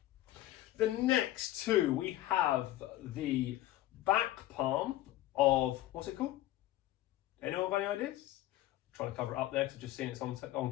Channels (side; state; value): right; quieter; 15.1 dB